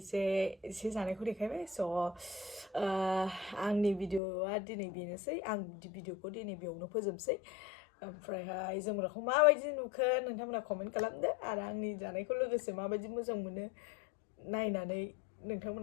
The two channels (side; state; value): right; drops out; at 4.2 s